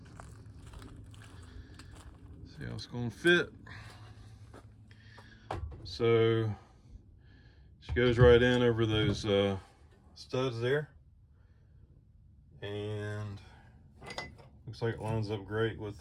see how it's going to fit. So she goes right in over those studs there, and looks like it lines up great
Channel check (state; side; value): identical; both; correlation 1.00